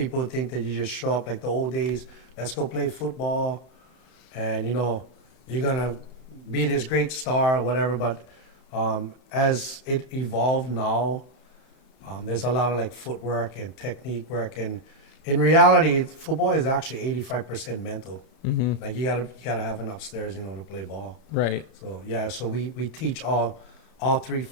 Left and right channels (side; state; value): right; late; 32 ms